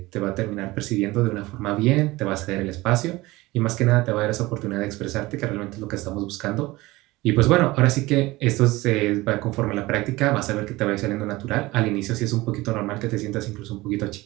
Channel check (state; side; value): quieter; left; 20.0 dB